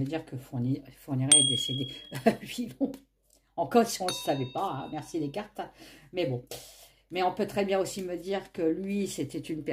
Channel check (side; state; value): both; identical; correlation 1.00